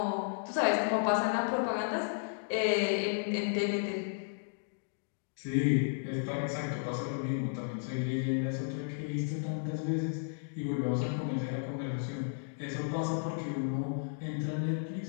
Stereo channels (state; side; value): silent; right; digital silence